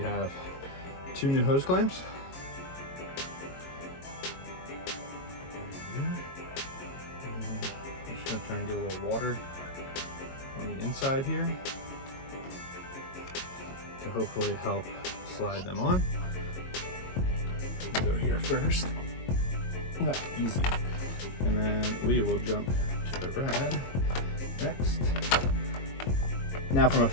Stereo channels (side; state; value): right; late; 22 ms